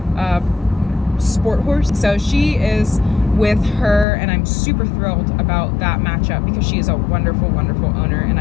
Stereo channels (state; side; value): drops out; right; at 4.0 s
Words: sport horse. So she is with her, and I'm super thrilled about that matchup because she is a wonderful, wonderful owner, and